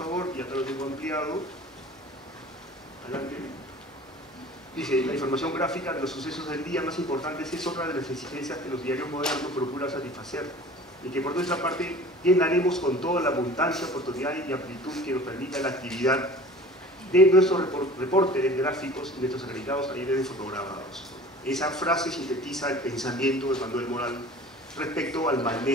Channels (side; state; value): both; normal; correlation 0.43